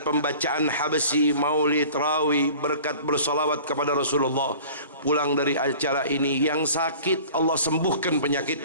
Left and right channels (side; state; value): both; inverted; correlation -0.44